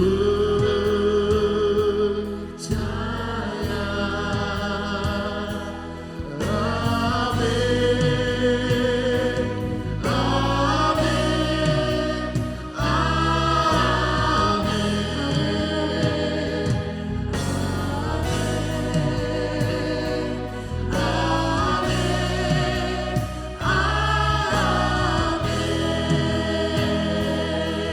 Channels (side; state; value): both; identical; correlation 1.00